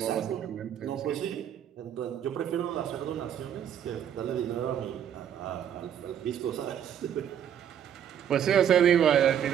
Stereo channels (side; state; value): left; quieter; 9.5 dB